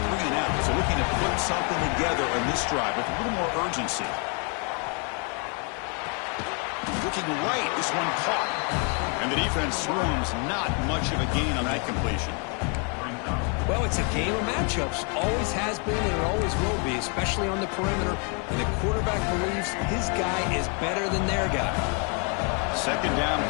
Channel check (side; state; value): right; quieter; 37.4 dB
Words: so looking to put something together on this drive with a little more urgency. looking right. This one caught. And the defense swarms not much of a gain on that completion. Well, it's a game of matchups. Always has been and it always will be, especially on the perimeter. And the quarterback believes his guy is better than their guy. Second down